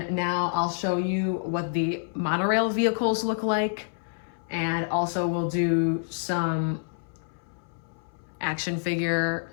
now I'll show you what the monorail vehicles look like. And also we'll do some action figure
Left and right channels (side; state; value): right; silent; 60 dB below the other